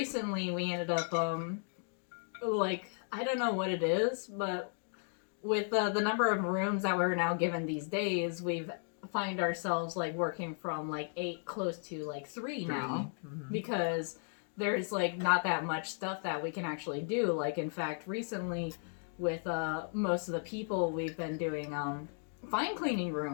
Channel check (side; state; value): right; silent; 54 dB below the other